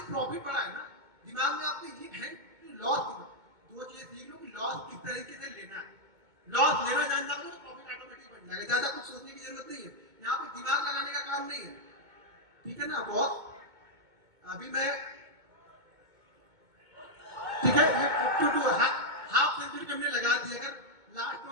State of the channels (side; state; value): left; late; 2.2 ms